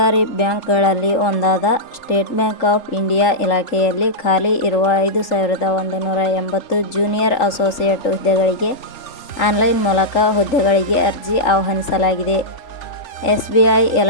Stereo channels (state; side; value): late; right; 3.4 ms